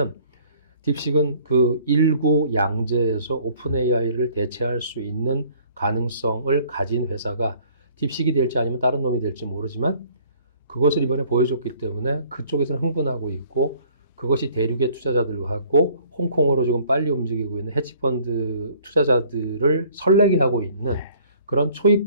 딥식은 그 일구 양제에서 오픈 AI를 대체할 수 있는 가능성을 가진 회사가 딥식이 될지 아니면 다른 놈이 될지 모르지만 그것을 이번에 보여줬기 때문에 그쪽에서는 흥분하고 있고 그것이 대륙의 투자자들하고 홍콩으로 지금 빨리 움직이고 있는 헤지펀드 투자자들을 설레게 하고 있는 네. 그런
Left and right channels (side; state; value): both; inverted; correlation -0.56